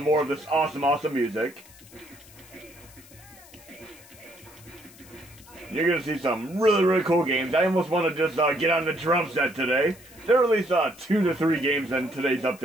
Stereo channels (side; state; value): left; noise; hiss, 22 dB below the sound